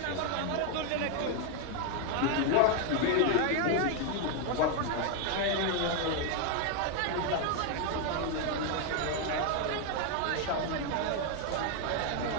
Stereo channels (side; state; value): both; different; correlation 0.01